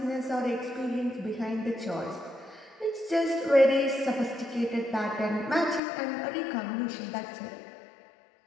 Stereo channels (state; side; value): drops out; right; at 5.8 s